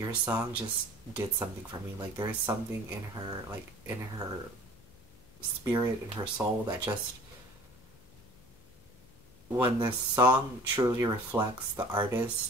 song just did something for me. Like, there is something in her, like, in her spirit, in her soul, that just, when the song truly reflects the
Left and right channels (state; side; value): noise; left; hum, 26 dB below the sound